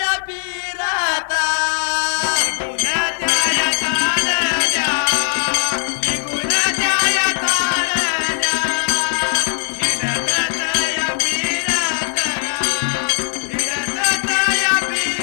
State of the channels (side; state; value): right; silent; 67 dB below the other